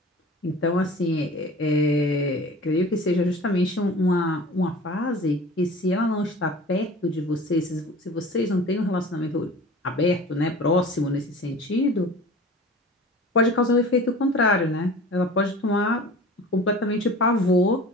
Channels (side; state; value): both; normal; correlation 0.40